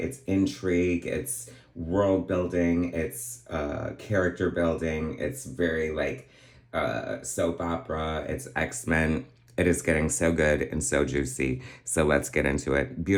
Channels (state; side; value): identical; both; correlation 1.00